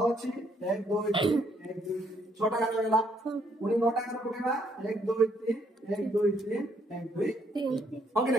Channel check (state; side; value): normal; both; correlation 0.70